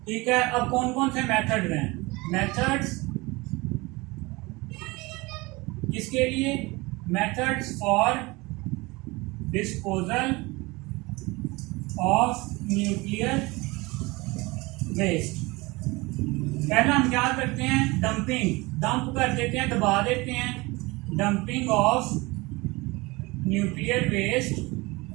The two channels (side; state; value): left; quieter; 23.5 dB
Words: ठीक है, अब कौन कौन से मेथड हैं? मेथड्स किसके लिए? Methods for disposal of nuclear waste. पहला हम क्या करते हैं? डंप कर देते हैं, दबा देते हैं। डंपिंग ऑफ न्यूक्लियर वेस्ट